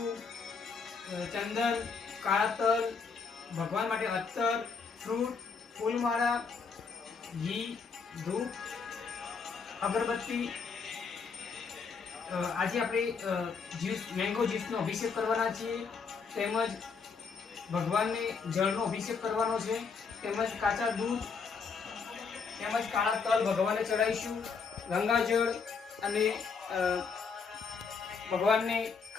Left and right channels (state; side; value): quieter; right; 5.3 dB